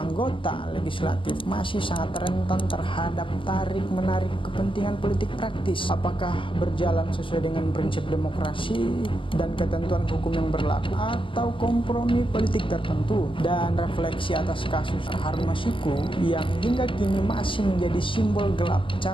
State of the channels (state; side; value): late; right; 0.25 ms